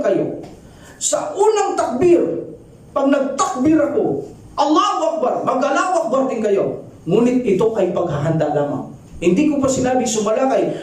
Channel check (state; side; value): identical; both; correlation 1.00